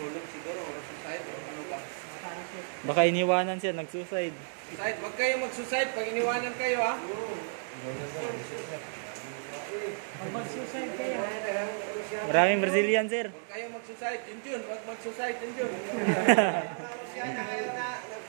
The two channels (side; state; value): left; silent; digital silence